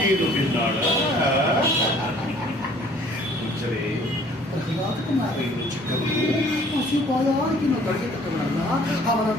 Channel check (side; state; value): both; normal; correlation 0.56